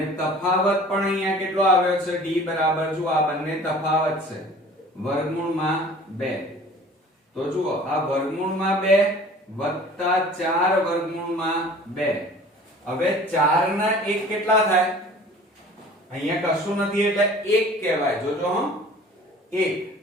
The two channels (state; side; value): normal; both; correlation 0.46